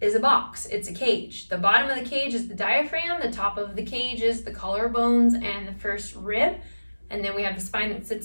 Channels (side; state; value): both; inverted; correlation -1.00